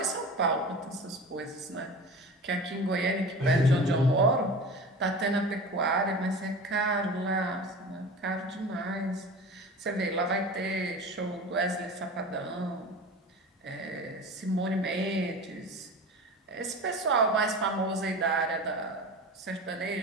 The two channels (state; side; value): normal; both; correlation 0.34